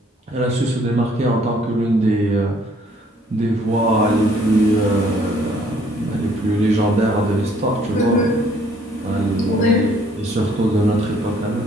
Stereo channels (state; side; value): normal; both; correlation 0.62